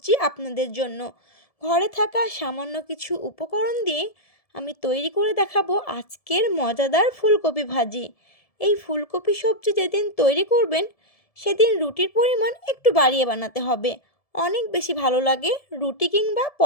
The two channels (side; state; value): right; late; 1.7 ms